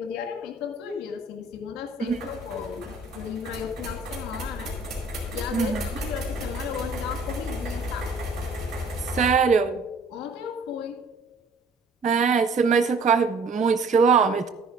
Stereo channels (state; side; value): quieter; left; 3.4 dB